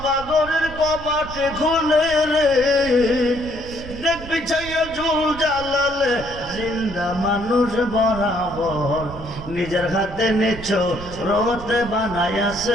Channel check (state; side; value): noise; right; rumble, 13 dB below the sound